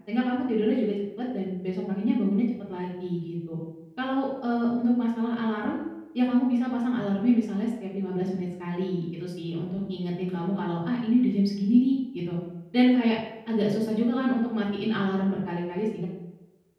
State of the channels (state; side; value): identical; both; correlation 1.00